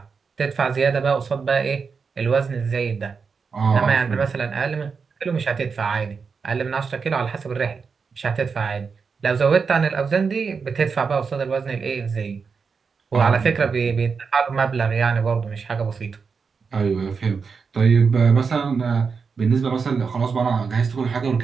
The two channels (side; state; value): left; quieter; 5.4 dB